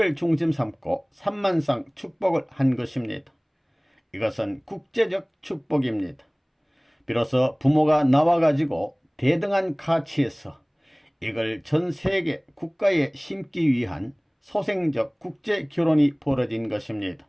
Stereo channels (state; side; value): identical; both; correlation 1.00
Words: 중심 삼고 3만 쌍 축복을 한 것입니다. 이것은 국제적 축복입니다. 비로소 부모가 나와가지고 대등한 가치에서 이걸 전 세계 국가에 심기 위한 소생적 국제결혼이 벌어진 것입니다.